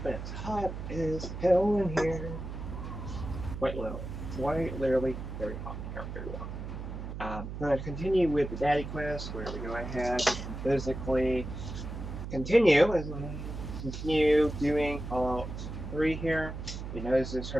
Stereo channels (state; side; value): noise; right; hum, 7 dB below the sound